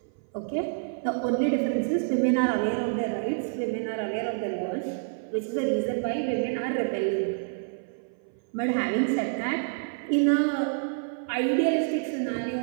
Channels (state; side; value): silent; left; 57 dB below the other